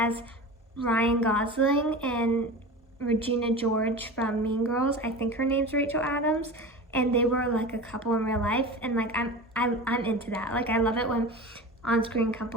Ryan Gosling and Regina George from Mean Girls. I think her name's Rachel Adams, and they were like a couple in real life, and like I'm into that. Like, I love it when on-screen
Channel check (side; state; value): both; normal; correlation 0.31